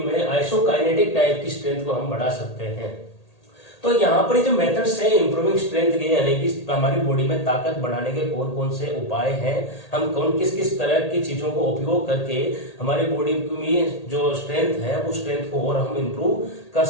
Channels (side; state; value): right; late; 1.8 ms